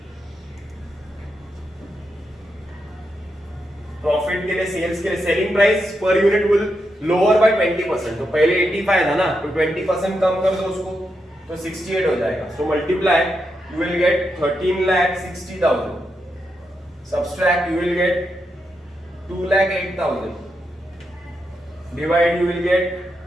के लिए, sales के लिए, selling price per unit will lower by 20%, तो पहले 85 था ना, तो 20% कम कर दो उसको तो 68 हो जाएगा। So multiply, you will get 13,60,000, subtract, you will get 2,08,000, divide, you will get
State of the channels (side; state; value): both; normal; correlation 0.84